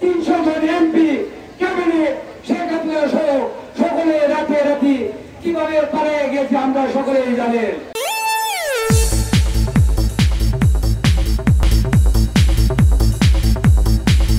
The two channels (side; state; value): both; identical; correlation 1.00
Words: জন এমপি, ক্যাবিনেট, শেখ হাসিনা সহ সকলে রাতে রাতে কিভাবে পালিয়ে গেছে আমরা সকলেই জানেন।